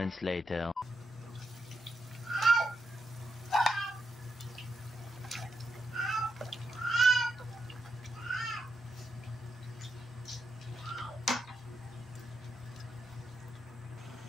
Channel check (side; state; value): both; normal; correlation 0.84